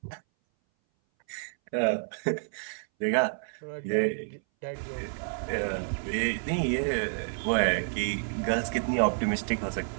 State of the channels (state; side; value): silent; left; 58 dB below the other